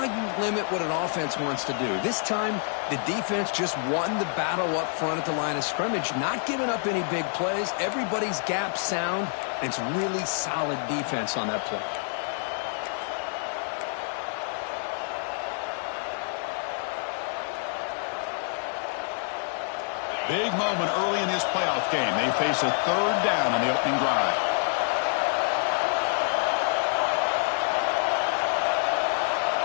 you limit what an offense wants to do. This time, the defense just won the battle up front at the line of scrimmage, not giving up any big plays. Everybody's gap sound, and it's really solid defense on that play. Big moment early in this playoff game. They face a third down on the opening drive.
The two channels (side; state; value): right; silent; 60 dB below the other